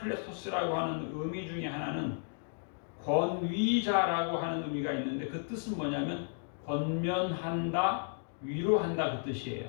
하는 의미 중에 하나는 권위자라고 하는 의미가 있는데, 그 뜻은 뭐냐면 권면한다, 위로한다 그 뜻이에요.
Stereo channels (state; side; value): silent; right; digital silence